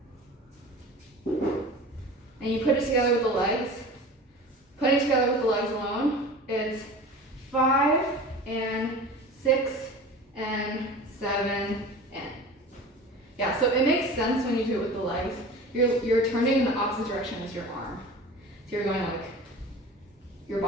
And you put it together with the legs. Putting it together with the legs alone, it's 5 and 6 and 7 and. Yeah, so it makes sense when you do it with the legs. You're turning in the opposite direction as your arm. So you're going like, your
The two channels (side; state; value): both; normal; correlation 0.37